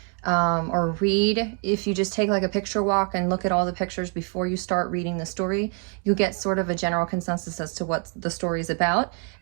or read, if you just take like a picture walk and look at all the pictures before you start reading the story, you get sort of a general consensus as to what the story is about,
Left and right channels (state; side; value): quieter; left; 38.8 dB